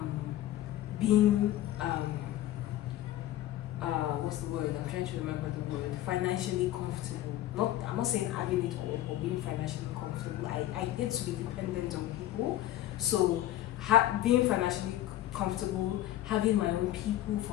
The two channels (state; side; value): quieter; right; 14.0 dB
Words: being, what's the word? I'm trying to remember the word. Financially comfortable. I'm not saying having it all, but being financially comfortable. I hate to be dependent on people. So, being financially comfortable, having my own people,